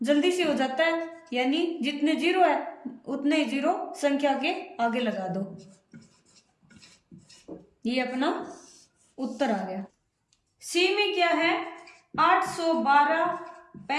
जल्दी से हो जाता है, यानी जितने 0 है उतने ही 0 संख्या के आगे लगा दो, ये अपना उत्तर आ गया। सी में क्या है, 812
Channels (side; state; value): both; identical; correlation 1.00